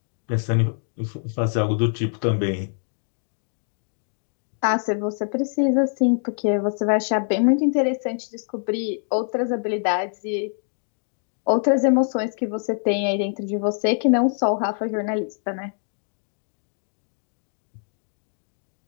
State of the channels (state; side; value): silent; right; 62 dB below the other